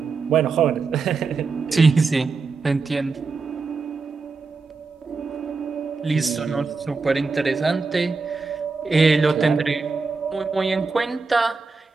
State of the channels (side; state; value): left; quieter; 4.4 dB